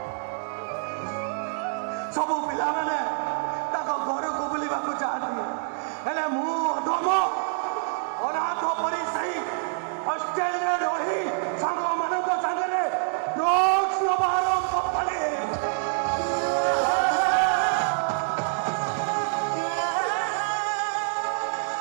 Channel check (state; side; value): silent; left; digital silence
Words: सबू पिला माने ताको घर को बुलिबा को चाहती हेले मु अधम अनाथ परी सही हॉस्टेल रे रही सांग मानक संगरे ड्रग्स नबारम पले